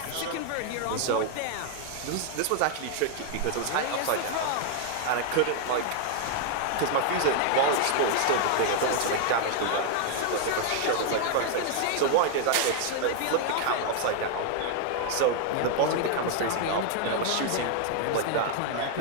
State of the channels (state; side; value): different; both; correlation 0.00